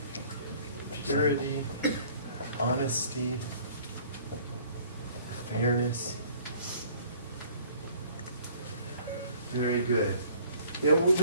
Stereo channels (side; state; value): both; inverted; correlation -0.55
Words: Purity, honesty, fairness. Very good.